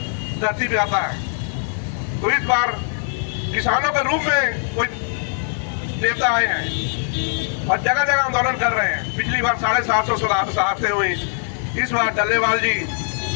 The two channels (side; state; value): right; silent; digital silence